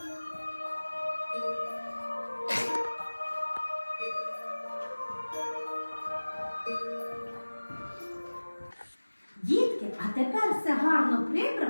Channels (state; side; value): inverted; both; correlation -1.00